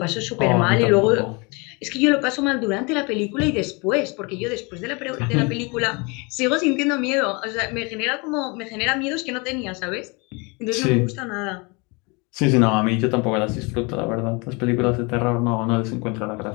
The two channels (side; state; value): right; quieter; 29.1 dB